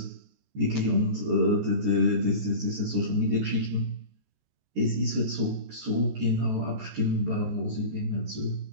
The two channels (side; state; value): left; late; 14 ms